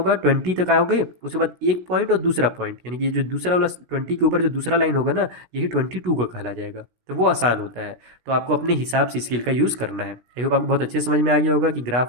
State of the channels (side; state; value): left; late; 17 ms